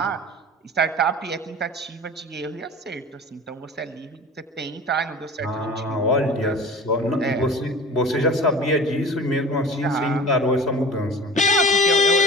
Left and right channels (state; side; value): normal; both; correlation 0.40